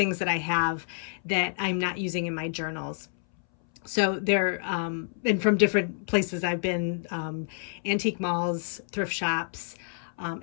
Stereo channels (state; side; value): silent; right; 59 dB below the other